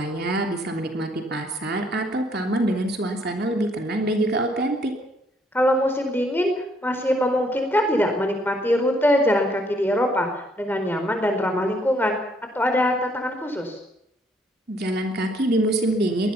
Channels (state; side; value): normal; both; correlation 0.67